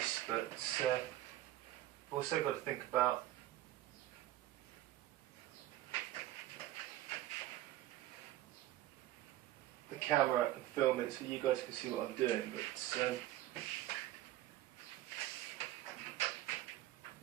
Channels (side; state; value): left; quieter; 14.6 dB